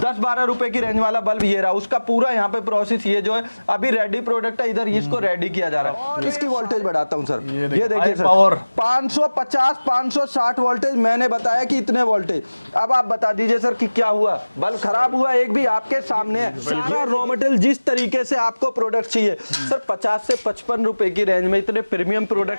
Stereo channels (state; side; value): inverted; both; correlation -1.00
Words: रुपए की रेंज वाला बल्ब ये रहा, उसका पूरा यहाँ पे प्रोसेस ये जो है अभी रेडी प्रोडक्ट है, इधर इसको रेडी किया जा रहा है। इसकी वोल्टेज बढ़ाता हूँ सर, ये देखिए सर 550 560 वोल्टेज, मैंने बताया कि इतने वोल्टेज। अब आप बता दीजिए सर कि क्या हुआ, बल्ब खराब हुआ एक भी? आपके सामने है सारा रॉ मटेरियल जिस तरीके से आपको प्रोडक्ट चाहिए सर। 50 से 55 रुपए की रेंज में इतने प्रीमियम